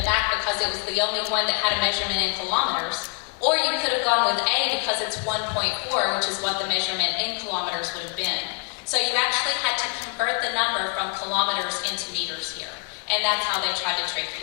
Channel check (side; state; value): right; quieter; 31.5 dB